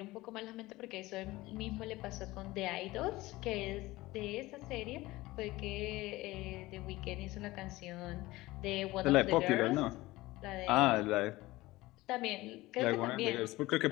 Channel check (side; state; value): right; quieter; 19.0 dB